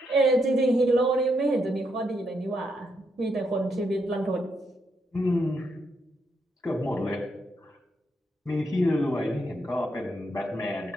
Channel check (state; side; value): normal; both; correlation 0.79